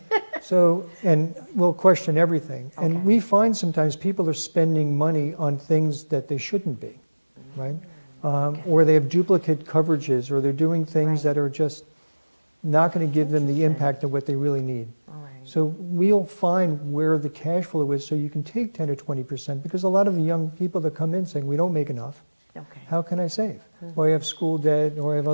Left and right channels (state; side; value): inverted; both; correlation -1.00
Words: So, and we'll question everything. Okay. And we find sometimes people are spending money on things that they shouldn't be, right? Or they have duplicate coverages, or they're doing things Right. that are just not going to give them the impact of what they really need. All right. So we'll find where the cash flow is so you can take 10 or 20%, because a lot of the young people that come in saying, we don't make enough. Okay. How can I save? Or I have school debt, or I have